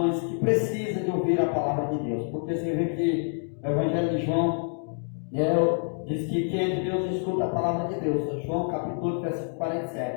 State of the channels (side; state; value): right; silent; 58 dB below the other